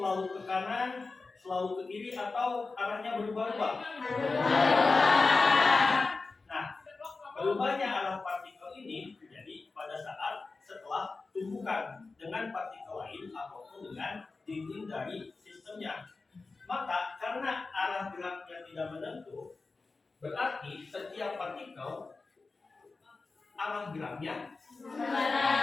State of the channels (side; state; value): right; quieter; 3.9 dB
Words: ke kanan, selalu ke kiri, atau arahnya berubah-ubah? Nah, berubahnya arah partikel ini terjadi pada saat setelah tumbukan dengan partikel lain ataupun dengan dinding dari sistemnya. Maka karena arah geraknya tidak menentu, berarti setiap partikel arah geraknya